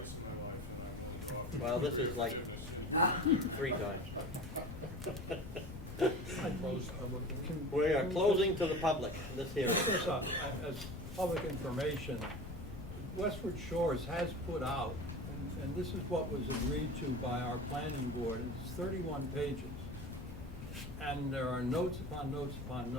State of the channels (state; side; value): noise; left; rumble, 12 dB below the sound